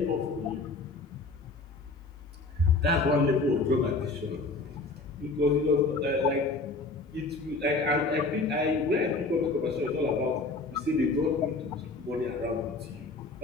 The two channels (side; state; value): right; quieter; 3.5 dB